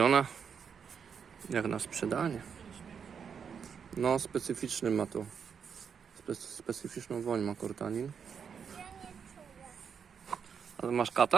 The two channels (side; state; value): left; quieter; 6.9 dB